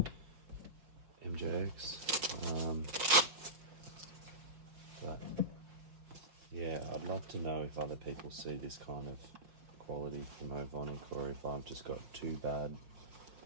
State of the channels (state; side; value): late; left; 5.3 ms